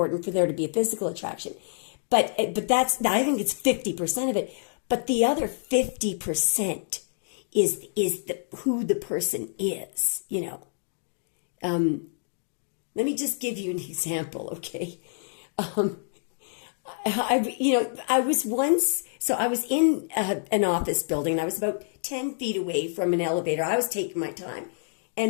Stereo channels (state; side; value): silent; right; digital silence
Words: for there to be a physical attraction. But I think it's 50% of it. But the other 50% is who the person is, Let me just give you an example, okay? I was in an office building, and I was about 10 feet away from an elevator. I was taking my time.